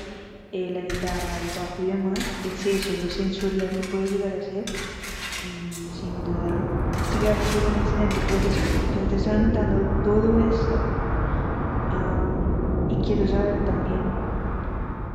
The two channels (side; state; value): both; identical; correlation 1.00